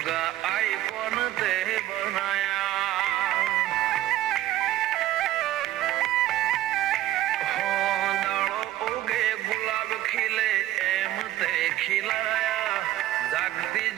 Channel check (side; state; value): left; quieter; 14.3 dB